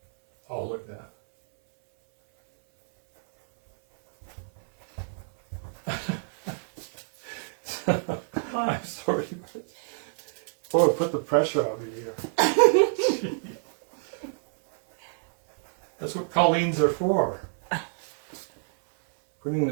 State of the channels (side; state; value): left; silent; 60 dB below the other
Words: Oh, look at that. I'm sorry. Boy, put the pressure on me here. That's what Colleen's are for. Putting